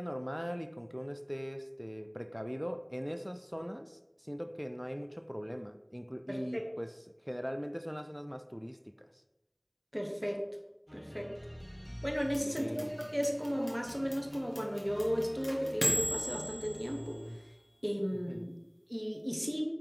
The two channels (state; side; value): identical; both; correlation 1.00